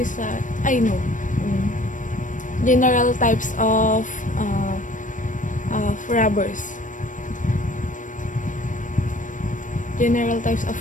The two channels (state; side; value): late; right; 0.37 ms